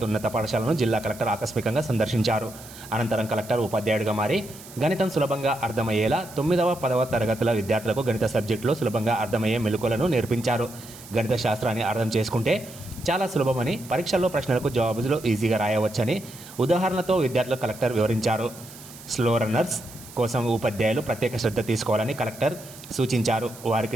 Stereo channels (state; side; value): noise; right; hiss, 18 dB below the sound